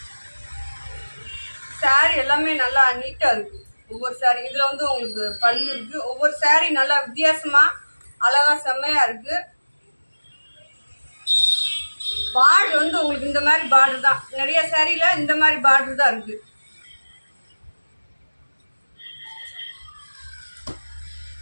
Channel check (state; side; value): inverted; both; correlation -1.00